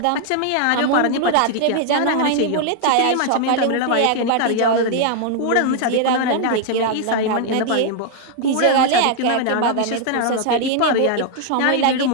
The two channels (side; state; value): both; different; correlation 0.00